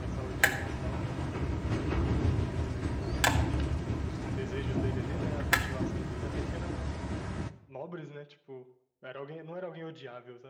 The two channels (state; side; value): identical; both; correlation 1.00